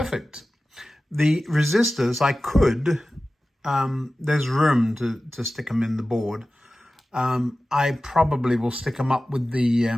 The resistors, I could, there's room to stick them in the board. I probably will stick them up with the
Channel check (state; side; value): normal; both; correlation 0.96